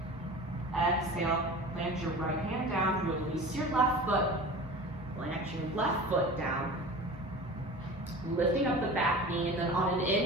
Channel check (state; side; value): normal; both; correlation 0.36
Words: Exhale, plant your right hand down, release your left foot, plant your left foot down. Lifting up the back knee, and then on an